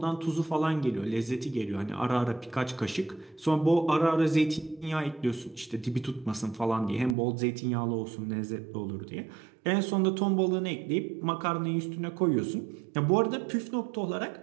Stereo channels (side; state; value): left; drops out; at 7.2 s